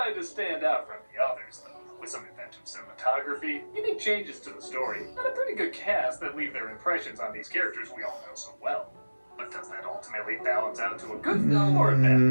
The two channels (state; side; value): inverted; both; correlation -1.00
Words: to stand out from the others, though, with some inventive cinematography, unique changes to the story, and a pretty good cast that leave their impressions on these characters we all know so well. But does that ultimately balance out to a good film or a